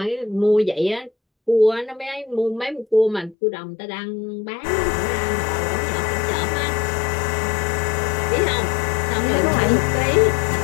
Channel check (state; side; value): drops out; right; at 3.4 s